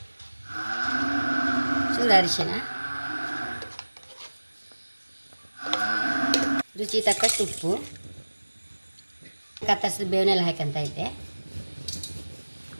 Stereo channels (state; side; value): inverted; both; correlation -1.00